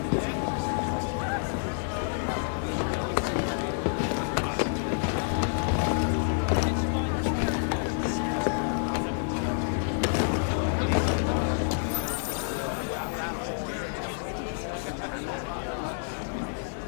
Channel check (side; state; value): right; silent; digital silence